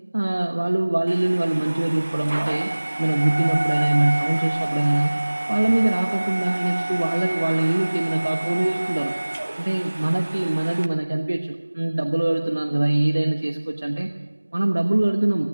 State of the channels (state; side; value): inverted; both; correlation -1.00